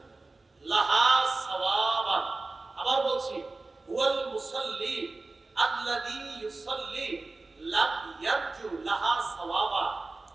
লাহা সাওয়াবান। আবার বলছি, হুয়াল মুসাল্লি আল্লাযী ইউসাল্লি লাম ইয়ারজু লাহা সাওয়াবা।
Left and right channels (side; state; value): left; quieter; 3.4 dB